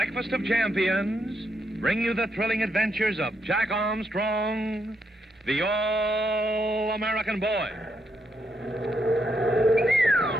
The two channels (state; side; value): normal; both; correlation 0.79